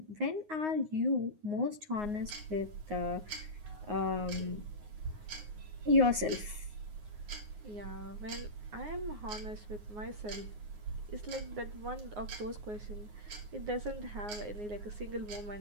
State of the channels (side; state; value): left; late; 9.6 ms